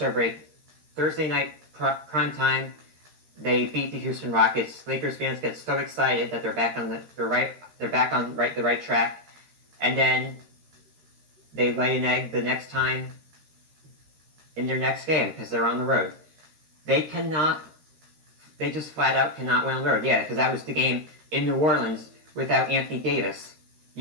break, Thursday night prime time, they beat the Houston Rockets. Lakers fans get so excited that they're back on the right track, and then they lay an egg the next time in their next game because they're on the road. They just flat out cannot win on the road. Yeah, because that was the game in New Orleans without Anthony Davis.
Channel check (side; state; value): left; late; 13 ms